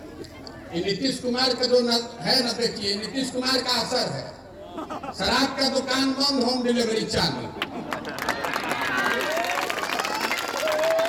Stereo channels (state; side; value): identical; both; correlation 1.00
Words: नीतीश कुमार का जो है ना, देखिए नीतीश कुमार का असर है। शराब का दुकान बंद, होम डिलीवरी चालू।